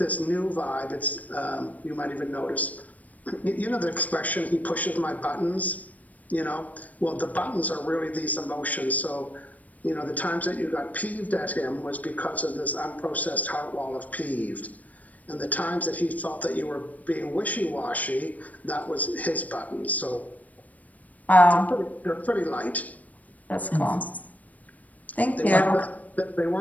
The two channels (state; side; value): late; right; 0.073 ms